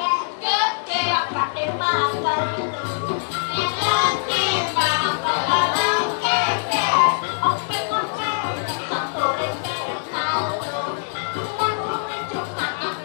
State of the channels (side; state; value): right; silent; digital silence